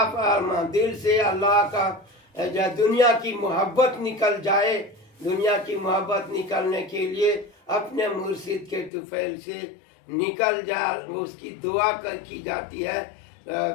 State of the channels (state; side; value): drops out; right; at 8.9 s